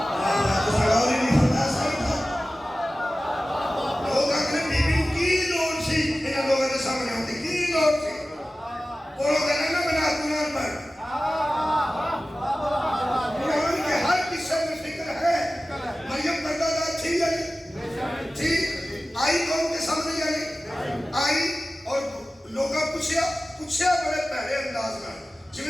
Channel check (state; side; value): normal; both; correlation 0.96